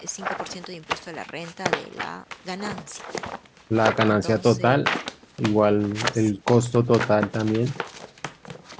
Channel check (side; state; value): both; identical; correlation 1.00